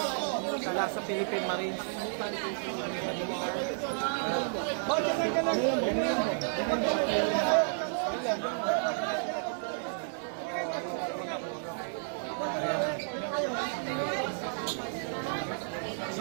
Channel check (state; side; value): silent; left; digital silence